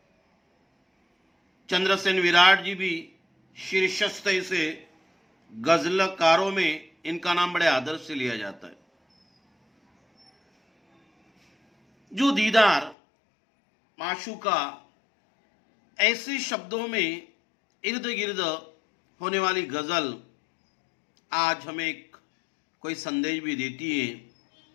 चंद्रसेन विराट जी भी शीर्षस्थ से गजलकारों में इनका नाम बड़े आदर से लिया जाता है। जो दीदार माशूका, ऐसे शब्दों में इर्द गिर्द होने वाली गजल आज हमें एक कोई संदेश भी देती है।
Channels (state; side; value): drops out; right; at 13.0 s